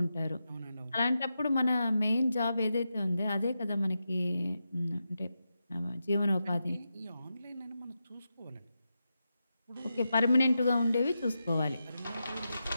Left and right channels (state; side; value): inverted; both; correlation -0.88